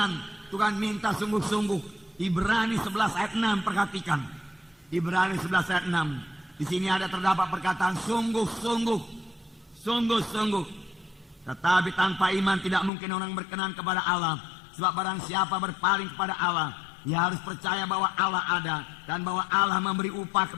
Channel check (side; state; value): right; drops out; at 12.9 s